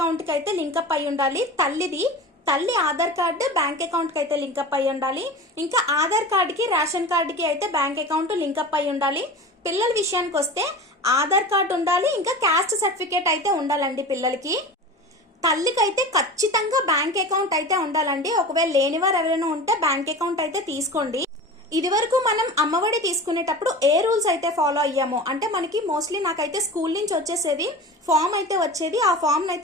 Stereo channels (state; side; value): normal; both; correlation 0.34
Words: కి అయితే లింకప్ అయి ఉండాలి. తల్లి ఆధార్ కార్డు బ్యాంక్ అకౌంట్ కి అయితే లింకప్ అయి ఉండాలి. ఇంకా ఆధార్ కార్డుకి రేషన్ కార్డుకి అయితే బ్యాంక్ అకౌంట్ లింకప్ అయి ఉండాలి. పిల్లల విషయానికి వస్తే ఆధార్ కార్డు ఉండాలి, ఇంకా క్యాస్ట్ సర్టిఫికేట్ అయితే ఉండాలండి పిల్లలకి. తల్లికి అయితే ఖచ్చితంగా బ్యాంక్ అకౌంట్ అయితే ఉండాలండి. ఒకవేళ లేనివారు ఎవరైనా ఉంటే బ్యాంక్ అకౌంట్ అయితే తీసుకోండి. ఇది వరకు మనం అమ్మఒడి తీసుకునేటప్పుడు ఏ రూల్స్ అయితే ఫాలో అయ్యామో, అంటే మనకి మోస్ట్లీ నాకైతే స్కూల్ నుంచి వచ్చేసేది ఫామ్ అయితే వచ్చేది, ఆ ఫామ్